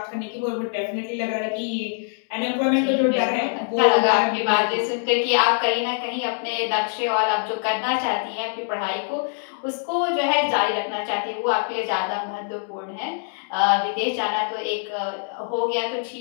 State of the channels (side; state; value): right; silent; 63 dB below the other